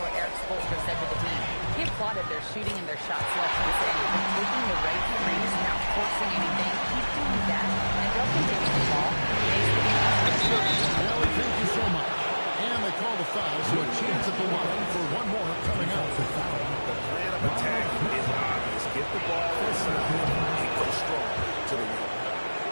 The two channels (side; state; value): both; inverted; correlation -1.00